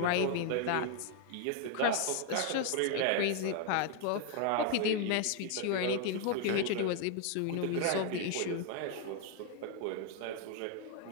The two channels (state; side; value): different; both; correlation 0.01